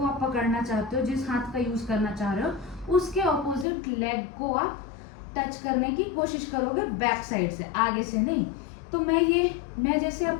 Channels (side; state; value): right; drops out; at 3.7 s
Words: आप पकड़ना चाहते हो, जिस हाथ का यूज करना चाह रहे हो, उसके ऑपोजिट लेग को आप टच करने की कोशिश करोगे बैक साइड से, आगे से नहीं। तो मैं जैसे